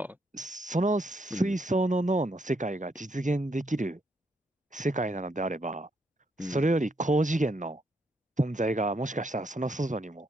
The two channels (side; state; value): both; normal; correlation 0.75